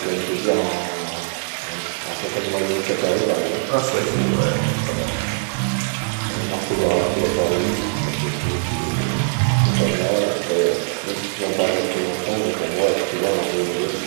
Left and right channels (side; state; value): left; silent; 55 dB below the other